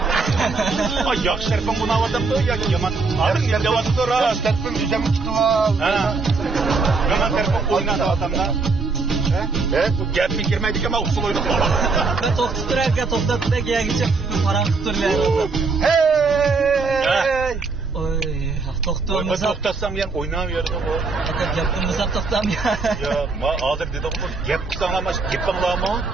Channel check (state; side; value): quieter; left; 4.2 dB